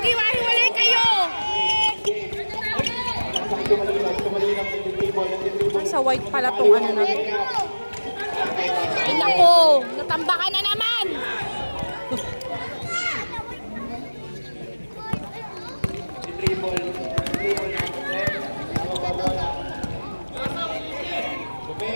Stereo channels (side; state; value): both; inverted; correlation -1.00